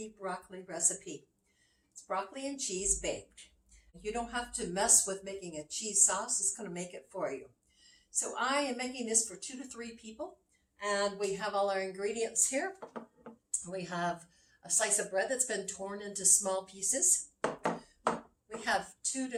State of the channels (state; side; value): identical; both; correlation 1.00